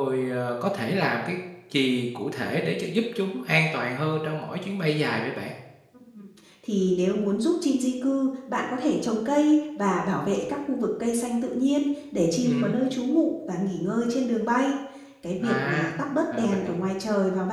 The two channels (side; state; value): both; identical; correlation 1.00